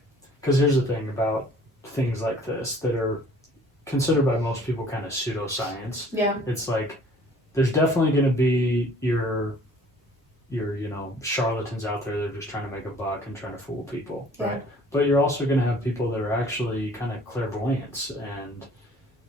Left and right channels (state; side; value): normal; both; correlation 0.54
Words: because here's the thing about things like this that are considered by most people kind of pseudoscience. Yeah. It's like there's definitely going to be your charlatans out there that are just trying to make a buck and trying to fool people, right? Yeah. But you're also going to have people that are actually kind of clairvoyants